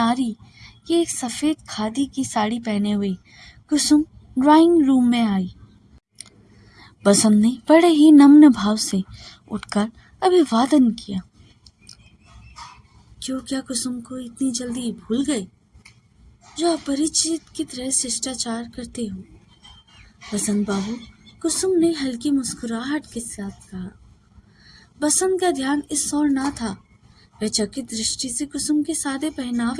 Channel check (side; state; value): both; identical; correlation 1.00